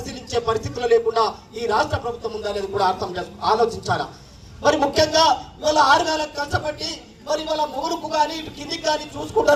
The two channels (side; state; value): both; identical; correlation 1.00